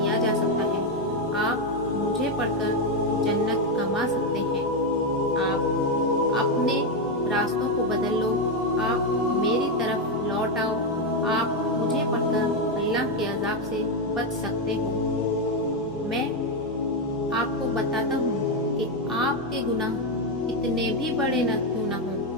جا سکتا ہے۔ آپ مجھے پڑھ کر جنت کما سکتے ہیں۔ آپ اپنے راستوں کو بدل لو، آپ میری طرف لوٹ آؤ، آپ مجھے پڑھ کر اللہ کے عذاب سے بچ سکتے ہو۔ میں آپ کو بتاتا ہوں کہ آپ کے گناہ کتنے بھی بڑے نہ کیوں نہ ہوں،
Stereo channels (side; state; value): both; normal; correlation 0.06